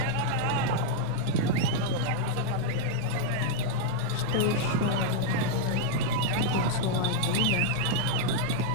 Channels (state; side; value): different; both; correlation -0.01